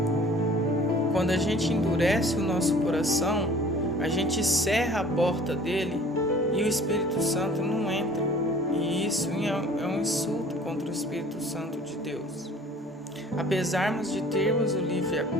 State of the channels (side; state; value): both; normal; correlation 0.50